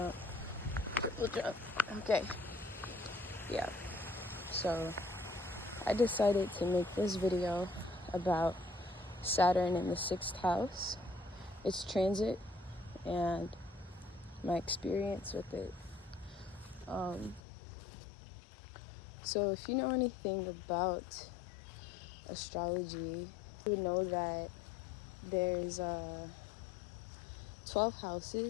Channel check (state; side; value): drops out; right; at 17.4 s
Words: triple jump. Okay, yeah. So I decided to make this video about Saturn in the 6th house, its transit, and my experience with it. So if you know anything about astrology, you would know that there's 12